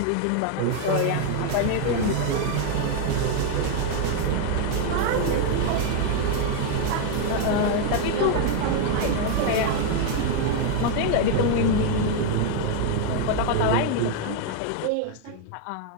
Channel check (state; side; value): different; both; correlation 0.00